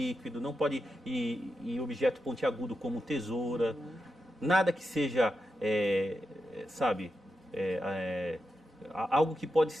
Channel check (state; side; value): normal; both; correlation 0.88